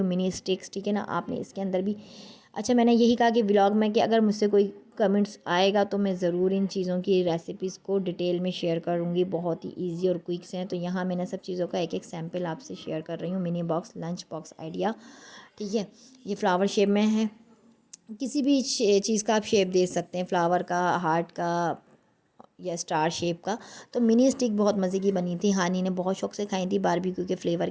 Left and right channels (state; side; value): identical; both; correlation 1.00